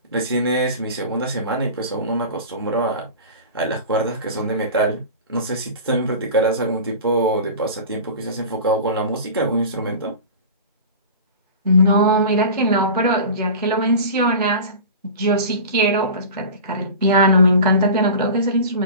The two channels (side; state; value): both; inverted; correlation -0.34